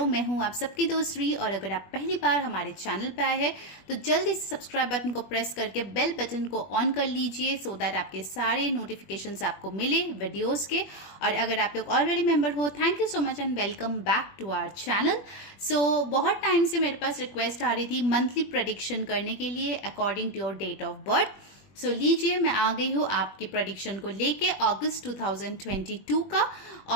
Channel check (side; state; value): right; late; 21 ms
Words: मैं हूं आप सबकी दोस्त री, और अगर आप पहली बार हमारे चैनल पे आए हैं तो जल्दी से सब्सक्राइब बटन को प्रेस करके बेल बटन को ऑन कर लीजिए सो दैट आपके सारे नोटिफिकेशंस आपको मिले वीडियोस के। और अगर आप लोग ऑलरेडी मेंबर हो, thank you so much and welcome back to our channel. So बहुत टाइम से मेरे पास रिक्वेस्ट आ रही थी मंथली प्रेडिक्शन करने के लिए according to your date of birth. So लीजिए, मैं आ गई हूँ आपकी प्रेडिक्शन को लेके अगस्त 2022 का।